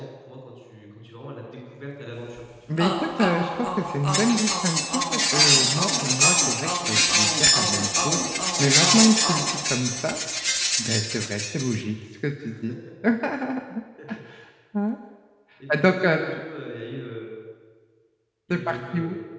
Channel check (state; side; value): identical; both; correlation 1.00